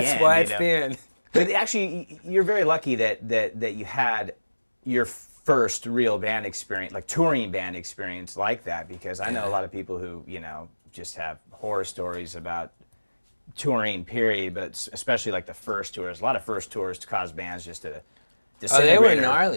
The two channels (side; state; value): both; inverted; correlation -1.00